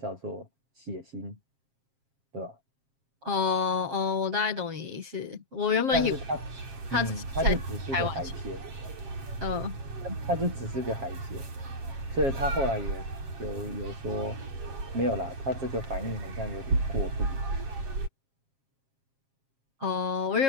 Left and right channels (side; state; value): left; late; 7.4 ms